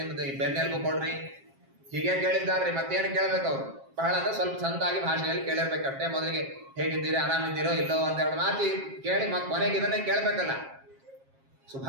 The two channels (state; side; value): late; left; 7.5 ms